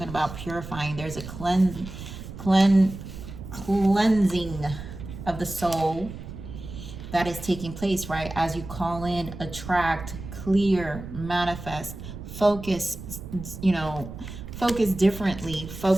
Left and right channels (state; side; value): noise; right; rumble, 11 dB below the sound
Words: about purifying. There's a cleansing of the soul that is taking place, right? As you call in, attract, clear, manifest, focus, focus differently.